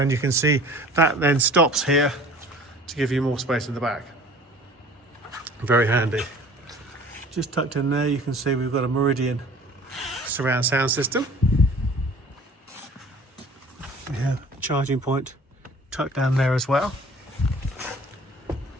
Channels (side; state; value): both; normal; correlation 0.48